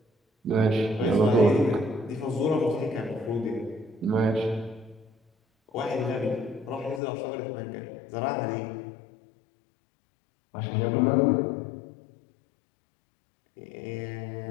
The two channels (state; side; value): drops out; right; at 7.0 s